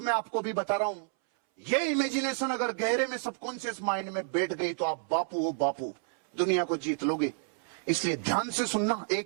आपको भी बता रहा हूं, ये इमेजिनेशन अगर गहरे में सबकॉन्शियस माइंड में बैठ गई तो आप बापू हो बापू, दुनिया को जीत लोगे। इसलिए ध्यान से सुनना,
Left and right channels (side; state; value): left; silent; 58 dB below the other